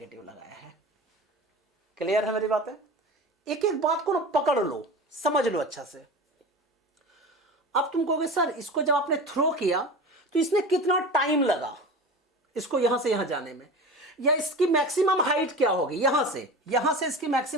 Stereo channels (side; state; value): both; normal; correlation 0.32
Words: लगाया है। क्लियर है मेरी बात है। एक एक बात को ना पकड़ लो, समझ लो अच्छा से। अब तुम कहोगे सर इसको जब आपने थ्रो किया तो इसने कितना टाइम लगा इसको यहां से यहां जाने में, या इसकी मैक्सिमम हाइट क्या होगी, यहां से इसकी